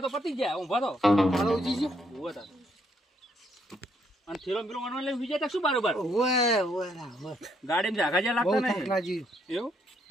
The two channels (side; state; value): both; normal; correlation 0.72